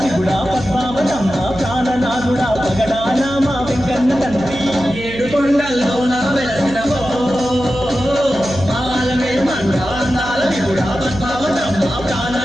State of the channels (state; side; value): noise; right; hum, 13 dB below the sound